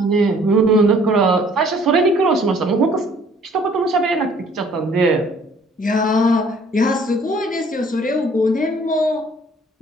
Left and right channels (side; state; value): both; normal; correlation 0.57